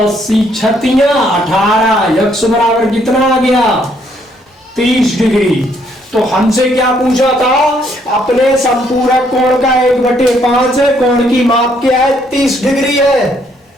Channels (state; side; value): normal; both; correlation 0.69